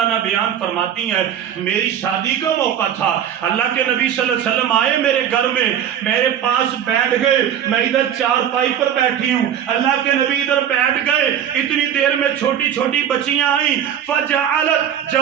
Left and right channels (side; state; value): left; quieter; 9.5 dB